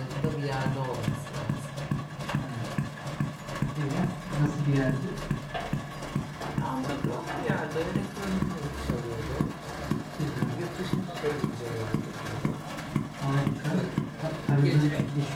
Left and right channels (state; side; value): identical; both; correlation 1.00